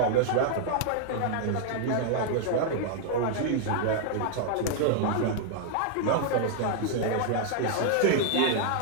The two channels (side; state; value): both; different; correlation -0.01